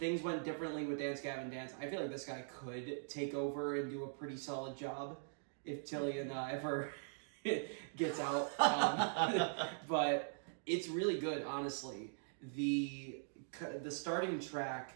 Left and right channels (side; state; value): left; silent; digital silence